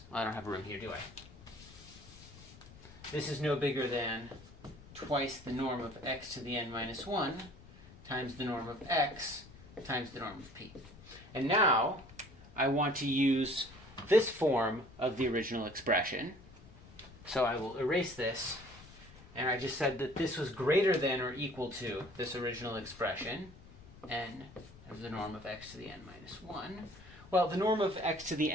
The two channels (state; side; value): noise; left; rumble, 20 dB below the sound